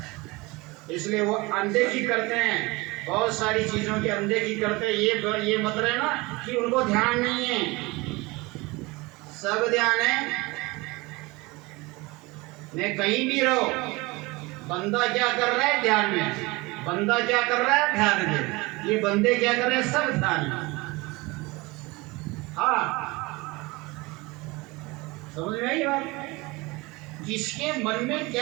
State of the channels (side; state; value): left; quieter; 23.6 dB